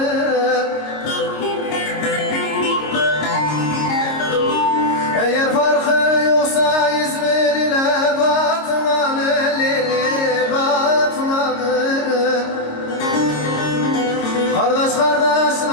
Eğer farkı yoksa İzmir ile Batman'ın lili Batman'ın. Kardeş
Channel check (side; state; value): right; late; 26 ms